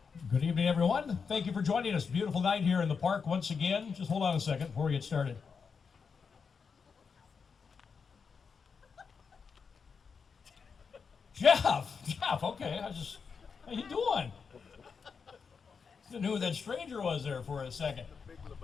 Good evening, everyone. Thank you for joining us. Beautiful night here in the park once again. Just hold on a second before we get started. Jeff, okay. How you doing? I knew who that stranger was there for a second. Big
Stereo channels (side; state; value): right; quieter; 5.7 dB